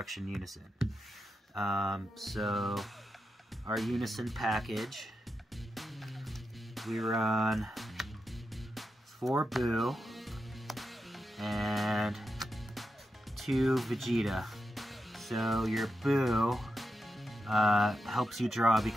Unison. So, our Unison package, we run 4 Boo and 2 Vegeta. So your Boo helps you draw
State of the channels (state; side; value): normal; both; correlation 0.87